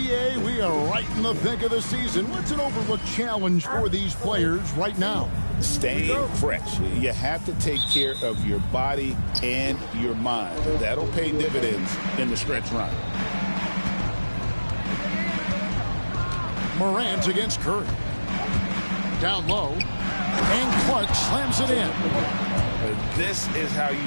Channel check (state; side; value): inverted; both; correlation -1.00